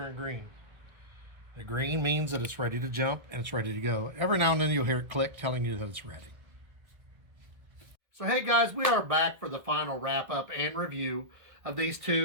green. The green means that it's ready to jump and it's ready to go. Every now and then you'll hear it click telling you that it's ready. So hey guys, we are back for the final wrap up and review of these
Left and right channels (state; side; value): late; left; 1.7 ms